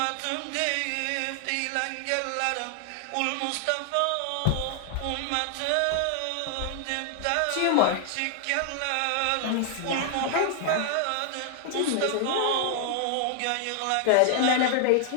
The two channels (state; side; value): different; both; correlation 0.00